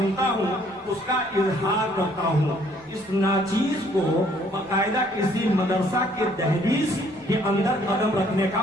ہوں اس کا اظہار کرتا ہوں۔ اس ناچیز کو باقاعدہ کسی مدرسہ کے دہلیز کے اندر قدم رکھنے کا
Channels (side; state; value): both; normal; correlation 0.63